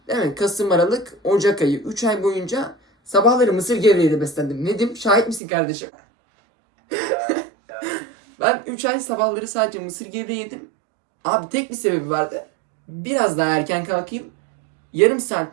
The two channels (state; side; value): drops out; left; at 5.4 s